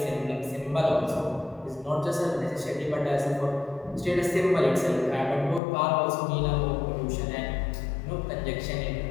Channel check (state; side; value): drops out; right; at 5.6 s